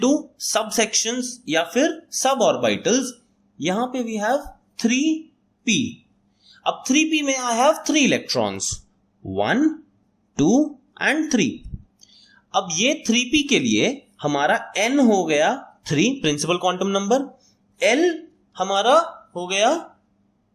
सब सेक्शंस या फिर सब ऑर्बिटल्स, यहां पे वी हैव 3p. अब 3p में आई हैव 3 इलेक्ट्रॉन्स 1 2 एंड 3. अब ये 3p के लिए हमारा n हो गया 3 प्रिंसिपल क्वांटम नंबर. l हमारा हो गया,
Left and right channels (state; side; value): identical; both; correlation 1.00